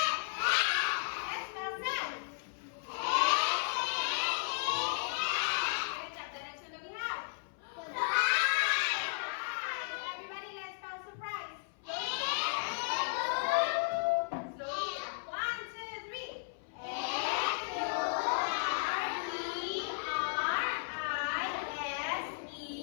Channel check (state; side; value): silent; right; 54 dB below the other